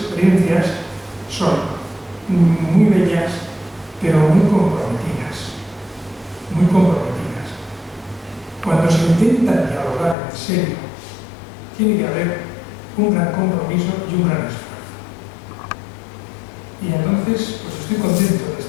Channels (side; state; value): right; drops out; at 10.2 s